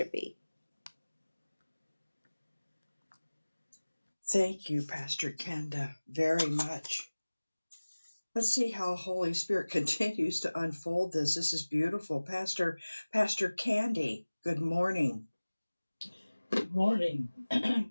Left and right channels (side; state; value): both; inverted; correlation -1.00